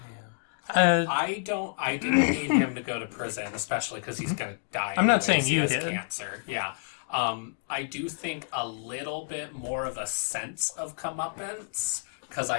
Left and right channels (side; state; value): right; silent; digital silence